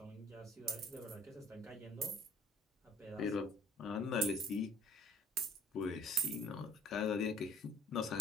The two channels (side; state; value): both; normal; correlation 0.54